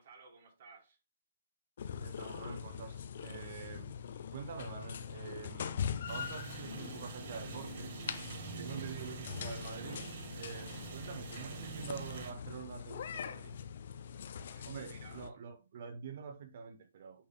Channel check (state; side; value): inverted; both; correlation -0.59